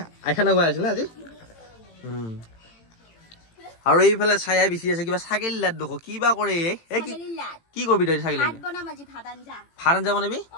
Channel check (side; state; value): right; late; 18 ms